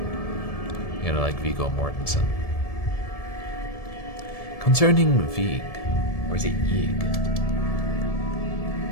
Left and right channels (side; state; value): right; late; 1.7 ms